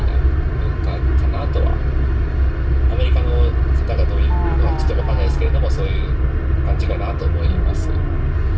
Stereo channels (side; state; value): both; identical; correlation 1.00